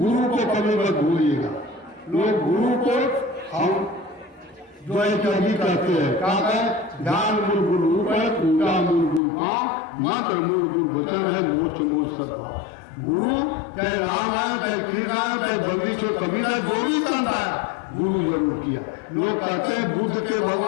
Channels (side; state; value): right; drops out; at 9.2 s